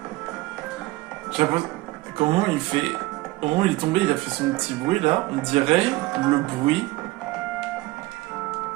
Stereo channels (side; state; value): left; quieter; 19.9 dB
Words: Comment il fait... Au moment où il est tombé, il a fait son petit bruit là. On dirait le bruit